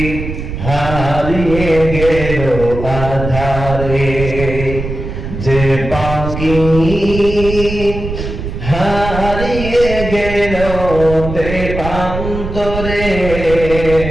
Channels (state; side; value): noise; right; rumble, 6 dB below the sound